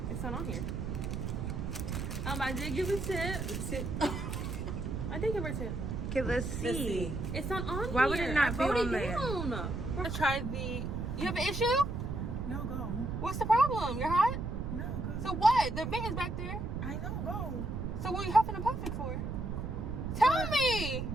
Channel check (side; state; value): right; noise; rumble, 3 dB below the sound